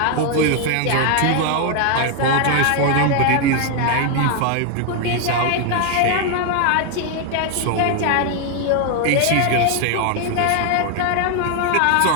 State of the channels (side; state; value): both; different; correlation 0.01